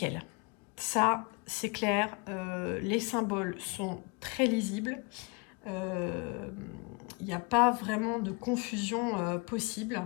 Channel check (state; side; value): quieter; right; 30.0 dB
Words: Ça, c'est clair, les symboles sont très lisibles. Il n'y a pas vraiment de confusion possible.